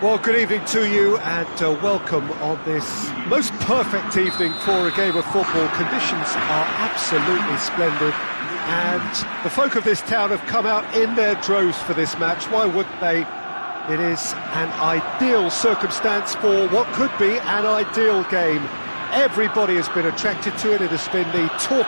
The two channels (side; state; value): both; inverted; correlation -1.00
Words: Well, good evening to you and welcome on this most perfect evening for a game of football. Conditions are absolutely splendid and the folk of this town have come out in their droves for this match. Why wouldn't they? It is an ideal circumstance for what could be an ideal game. Everybody has been attracted to it. It has been the